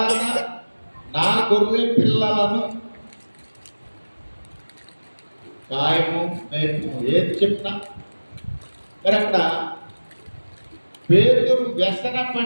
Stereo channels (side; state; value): both; inverted; correlation -1.00